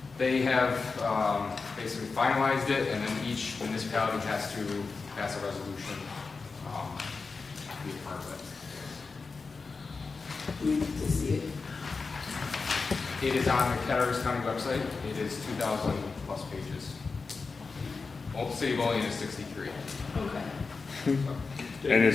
They have basically finalized it, and then each municipality has to pass a resolution to be a part of it. We need to see it. It is on the Cataraqui County website. It is 2,000 plus pages. City of Olean is 63. Okay. And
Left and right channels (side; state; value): right; quieter; 4.4 dB